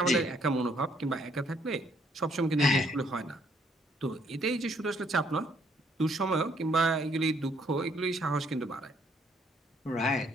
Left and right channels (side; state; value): both; normal; correlation 0.68